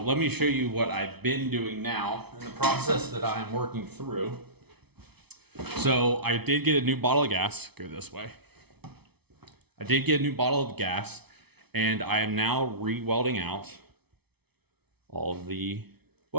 let me show you what I've been doing now in the process that I'm working through. So I did get a new bottle of gas. Go this way. I did get a new bottle of gas and I am now re-welding out all of the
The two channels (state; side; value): late; left; 0.98 ms